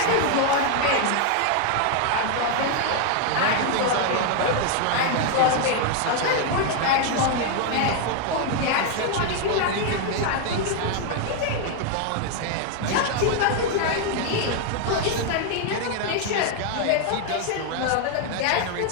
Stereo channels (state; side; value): different; both; correlation 0.00